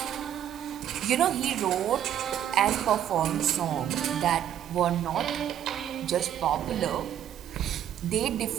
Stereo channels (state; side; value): quieter; left; 10.5 dB